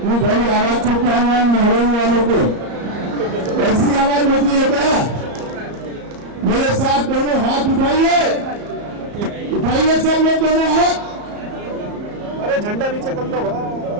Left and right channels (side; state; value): left; late; 34 ms